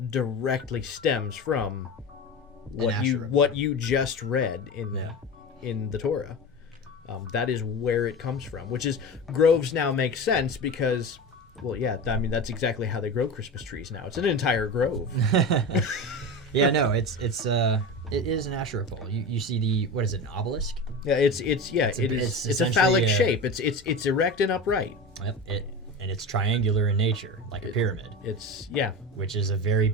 directly stems from what you just read in the Torah. That is where it comes from, which is groves now make sense because, well, yeah, I mean, that's exactly how they grow Christmas trees now. It's an entire grove. Yeah, no, it is an Asherah pole. You see what is it, an obelisk? Yeah, it's a phallic shape. It's erect and upright. Yep, and it's triangular in nature, like a pyramid. Which is a very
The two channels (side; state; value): both; normal; correlation 0.27